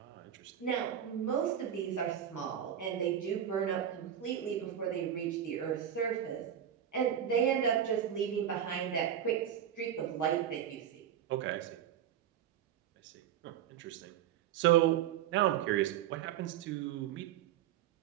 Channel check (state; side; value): quieter; left; 10.0 dB